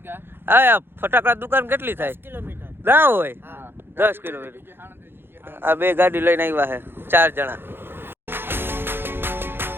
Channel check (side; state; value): left; late; 0.10 ms